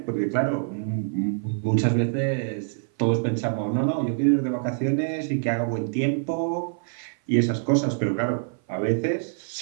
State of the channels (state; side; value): silent; left; 56 dB below the other